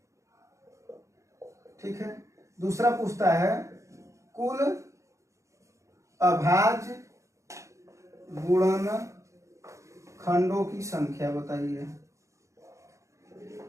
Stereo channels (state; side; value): late; left; 0.15 ms